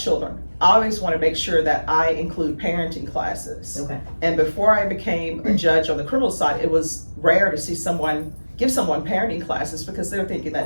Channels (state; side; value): inverted; both; correlation -1.00